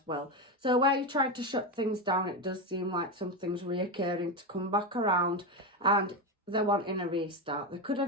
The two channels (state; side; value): normal; both; correlation 0.14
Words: well. So where you're trying to shut things down, it does seem like something's reoccurring to come back around, and they're wanting a restart. There could